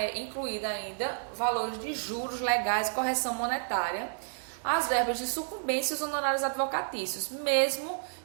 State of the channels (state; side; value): silent; left; digital silence